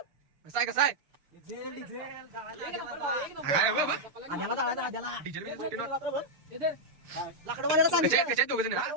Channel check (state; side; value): late; left; 6.8 ms